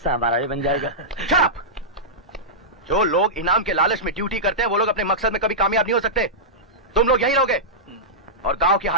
हमारा भी बन जाएगा। चुप! जो लोग इनाम के लालच में ड्यूटी करते हैं वो लोग अपने मकसद में कभी कामयाब नहीं हो सकते। तुम लोग यहीं रहोगे और गांव के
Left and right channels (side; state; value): both; normal; correlation -0.13